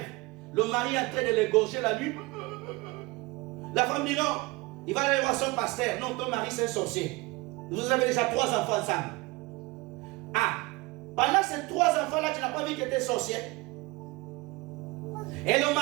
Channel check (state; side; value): quieter; left; 23.6 dB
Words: Le mari est en train de l'égorger la nuit. La femme dit non. Il va aller voir son pasteur. Non, ton mari c'est un sorcier. Vous avez déjà 3 enfants ensemble. Ah, pendant ces 3 enfants-là, tu n'as pas vu que tu étais sorcier. Et le